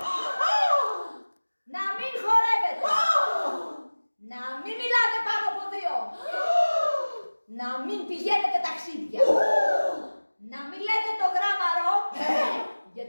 να μην χορεύετε, να μην μιλάτε πάνω από δύο, να μην πηγαίνετε ταξίδια, να μην λέτε το γράμμαρο,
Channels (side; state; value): both; inverted; correlation -1.00